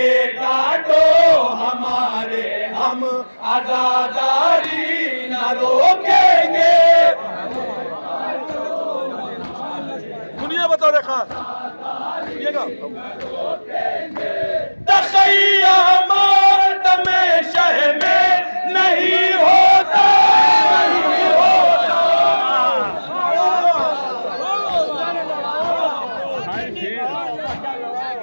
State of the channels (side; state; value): both; inverted; correlation -1.00